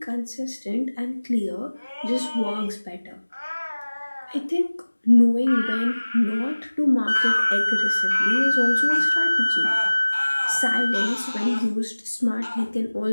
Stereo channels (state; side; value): inverted; both; correlation -1.00